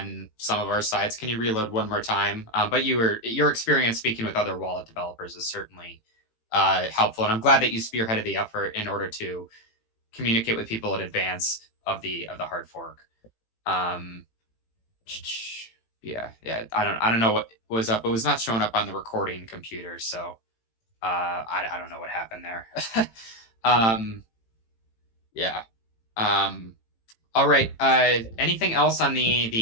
some of our sides. Can you reload one more time? But your experience speaking with other wallet developers is certainly helpful, and I'm glad that you spearheaded the effort in order to communicate with people in advance of the hard fork. Yeah. I don't know what was up. It was not showing up on the recording computer, so I don't know what happened there. Yeah. All right. Anything else on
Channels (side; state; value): right; late; 18 ms